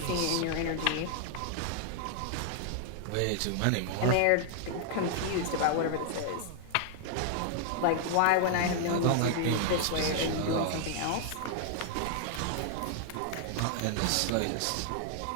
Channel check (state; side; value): different; both; correlation 0.00